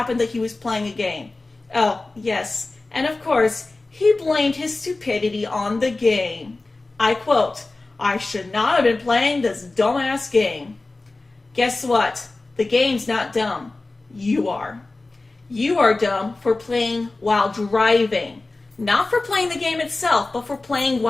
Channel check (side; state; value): right; quieter; 3.3 dB